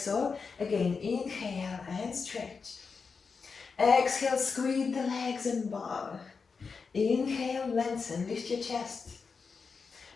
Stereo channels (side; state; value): right; quieter; 5.1 dB